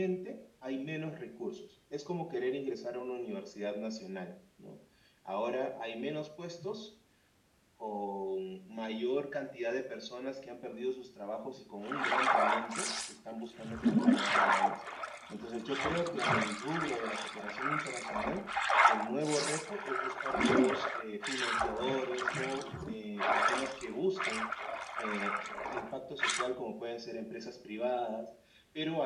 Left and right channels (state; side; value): identical; both; correlation 1.00